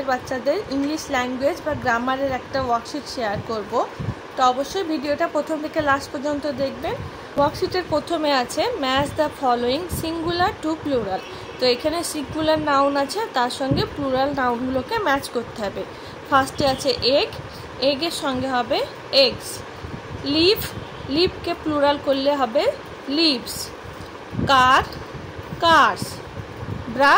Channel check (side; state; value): both; identical; correlation 1.00